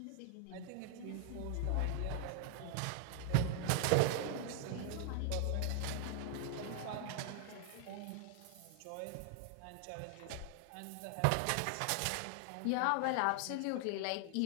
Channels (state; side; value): different; both; correlation 0.00